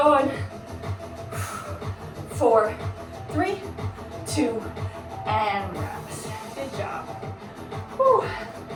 4, 3, 2, and rest. Good job. Whew.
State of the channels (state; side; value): identical; both; correlation 1.00